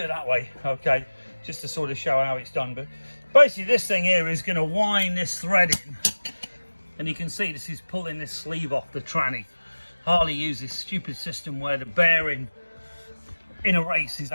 that way, okay, just to sort of show how it's done. But basically this thing here is going to wind this thread in, and you can see this is pulling this sleeve off the tranny. Harley uses this stupid system where the bearing in a race is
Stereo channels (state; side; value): inverted; both; correlation -1.00